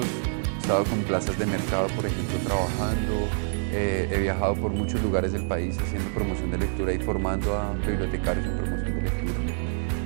he estado con plazas de mercado, por ejemplo, trabajando, he viajado por muchos lugares del país haciendo promoción de lectura y formando a bibliotecarios en promoción de lectura.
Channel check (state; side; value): silent; left; digital silence